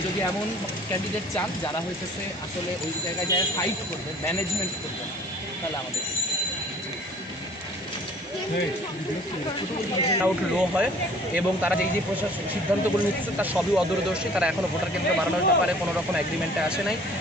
যদি এমন ক্যান্ডিডেট চান যারা হইতেছে আসলে ওই জায়গায় যায় ফাইট করবে, ম্যানেজমেন্ট করবে, তাহলে আমাদের আউট লো হয় এবং তারা যে প্রশাসন সিদ্ধান্তগুলো নিচ্ছে তার সবই অদূরদর্শী। তারা এখনও ভোটার কেন্দ্র বাড়ানোর ব্যাপারে কোনো রকম এগ্রিমেন্টে আসে নাই।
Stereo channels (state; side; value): normal; both; correlation 0.52